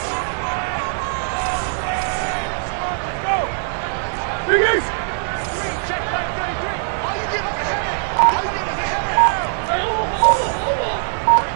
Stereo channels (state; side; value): silent; left; 65 dB below the other